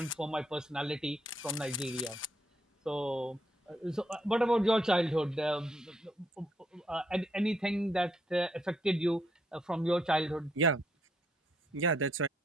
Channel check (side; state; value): both; normal; correlation 0.74